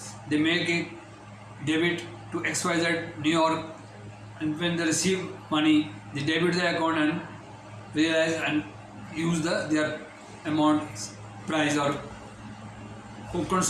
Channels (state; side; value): identical; both; correlation 1.00